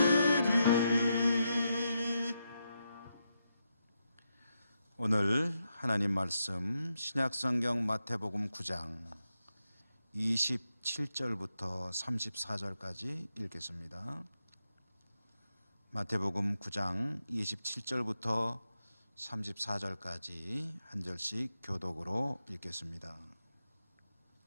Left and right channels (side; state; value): both; inverted; correlation -0.84